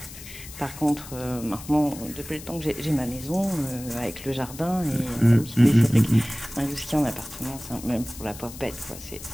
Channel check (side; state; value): left; noise; hiss, 15 dB below the sound